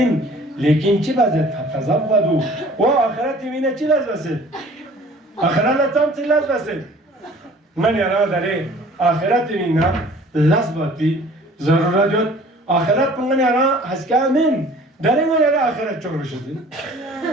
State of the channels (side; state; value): both; normal; correlation 0.50